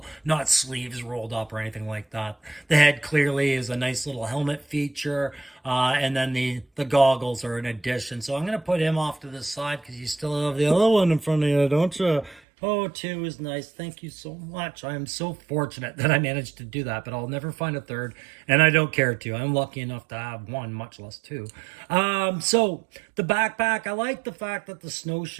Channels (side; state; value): left; drops out; at 12.4 s